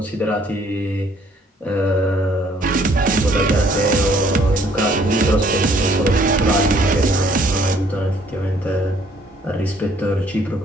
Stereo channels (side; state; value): both; normal; correlation 0.62